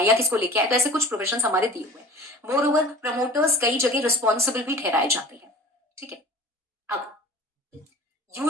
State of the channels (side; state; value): both; normal; correlation 0.43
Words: या किसको लेके आए। तो ऐसे कुछ प्रोफेशन हमारे दिए हुए हैं। मोर ओवर प्रमोटर्स कई जगह रिस्पॉन्सिबल भी ठहराए जाते हैं। ठीक है, अब